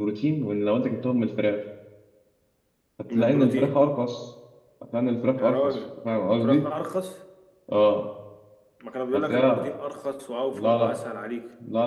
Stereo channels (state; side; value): identical; both; correlation 1.00